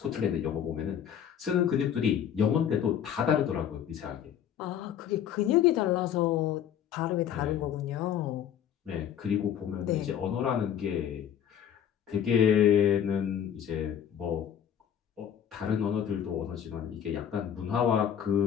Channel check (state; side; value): quieter; right; 9.2 dB